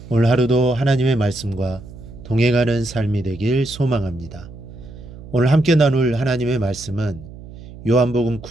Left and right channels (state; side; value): noise; right; hum, 16 dB below the sound